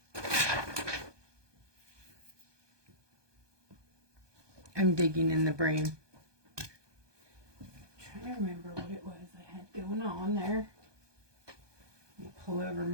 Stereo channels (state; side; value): late; left; 1.2 ms